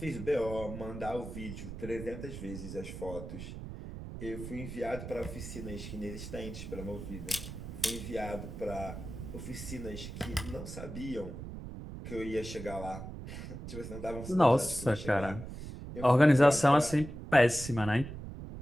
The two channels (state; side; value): noise; right; rumble, 9 dB below the sound